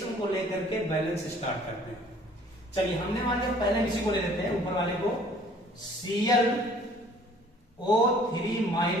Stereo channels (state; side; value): normal; both; correlation 0.55